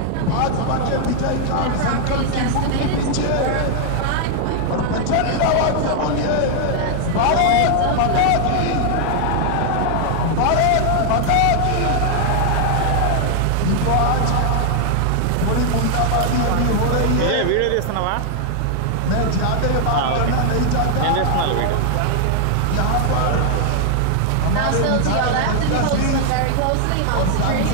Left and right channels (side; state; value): both; different; correlation 0.00